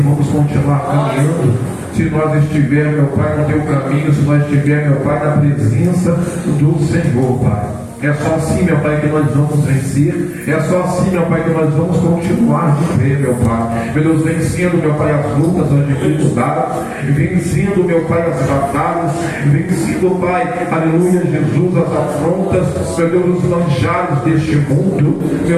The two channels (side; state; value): both; identical; correlation 1.00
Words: vamos continuar caminhando, se nós estivermos, meu Pai, no Teu caminho, se nós estivermos, meu Pai, na presença do Senhor, Pai. É só assim, meu Pai, que nós vamos vencer. É só assim, meu Pai, que nós vamos continuar de pé, meu Pai. Meu Deus, vencendo, meu Pai, as lutas, as dificuldades, vencendo, meu Pai, as batalhas, vencendo, Pai, aleluia, Jesus, as afrontas, meu Deus, os manjares deste mundo,